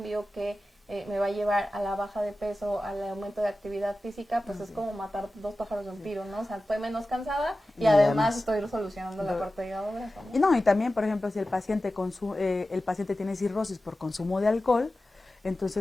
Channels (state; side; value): normal; both; correlation 0.95